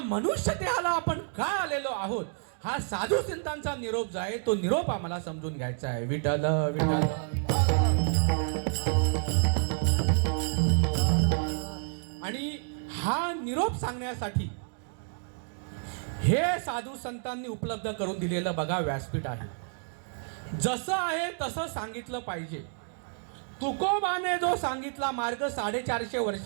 मनुष्य देहाला आपण का आलेलो आहोत, हा साधू संतांचा निरोप जो आहे तो निरोप आम्हाला समजून घ्यायचा आहे. विठ्ठल विठ्ठल. आणि हा निरोप सांगण्यासाठी हे साधू संतांनी उपलब्ध करून दिलेलं बघा व्यासपीठ आहे. जसं आहे तसं सांगितलं पाहिजे. तुकोबाने जो सांगितला मार्ग 450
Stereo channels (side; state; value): left; silent; 58 dB below the other